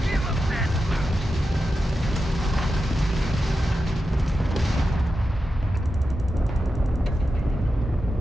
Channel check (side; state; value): both; normal; correlation 0.90